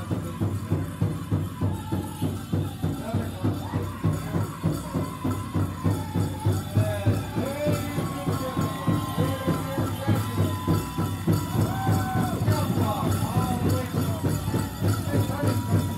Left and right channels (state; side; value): identical; both; correlation 1.00